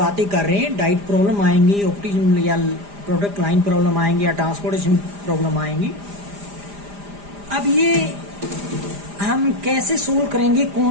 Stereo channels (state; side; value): late; left; 4.9 ms